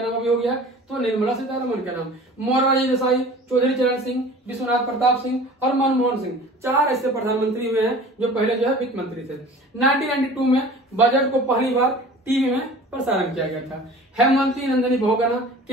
नाम भी हो गया? तो निर्मला सीतारमण के नाम। मोरारजी देसाई, चौधरी चरण सिंह, विश्वनाथ प्रताप सिंह और मनमोहन सिंह 4 ऐसे प्रधानमंत्री हुए हैं जो पहले जो है वित्त मंत्री थे। 1992 में बजट को पहली बार टीवी में प्रसारण किया गया था। हेमवती नंदनी बहुगुणा,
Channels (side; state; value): both; normal; correlation 0.43